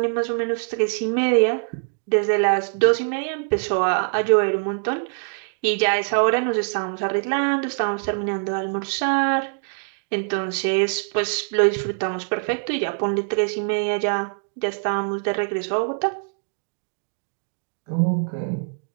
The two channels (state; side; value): silent; left; digital silence